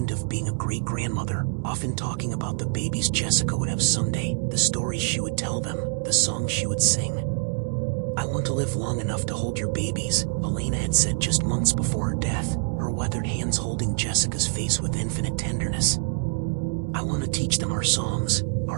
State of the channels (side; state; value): left; silent; digital silence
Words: of being a great-grandmother, often talking about the babies Jessica would have someday, the stories she would tell them, the songs she would sing. I want to live long enough to hold your babies, Elena had said just months before her death, her weathered hands holding Jessica's face with infinite tenderness. I want to teach them our songs,